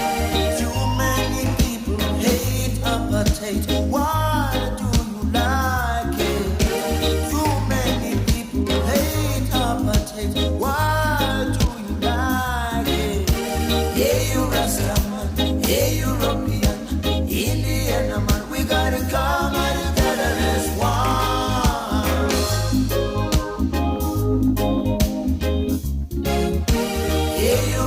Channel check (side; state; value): both; identical; correlation 1.00